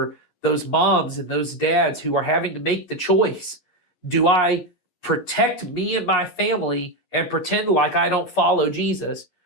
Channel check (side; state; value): right; late; 11 ms